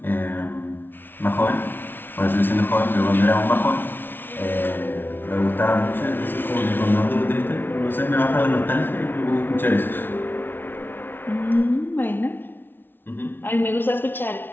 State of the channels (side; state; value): right; late; 0.10 ms